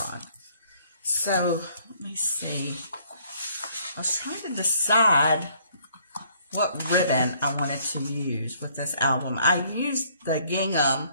So, let me see. I was trying to decide what ribbon I wanted to use with this album. I used the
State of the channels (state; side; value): inverted; both; correlation -0.63